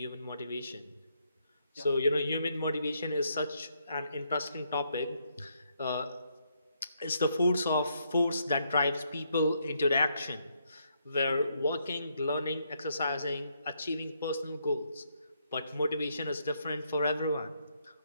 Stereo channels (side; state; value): both; inverted; correlation -0.76